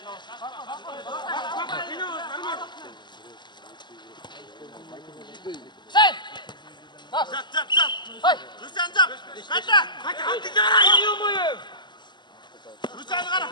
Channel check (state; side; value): late; right; 0.21 ms